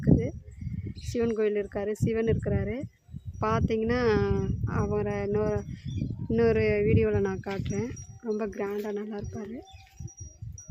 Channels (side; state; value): both; identical; correlation 1.00